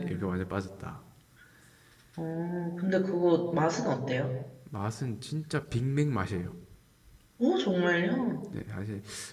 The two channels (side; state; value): both; identical; correlation 1.00